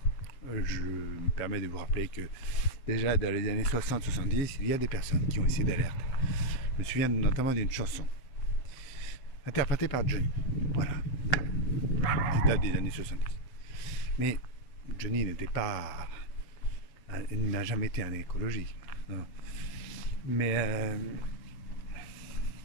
je me permets de vous rappeler que déjà dans les années 60-70, il y a des personnes qui ont essayé d'alerter. Je me souviens notamment d'une chanson interprétée par Johnny. Voilà. Qui date des années 70. Mais Johnny n'était pas... Il n'a jamais été un écologiste. Non. Mais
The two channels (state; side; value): late; right; 7.8 ms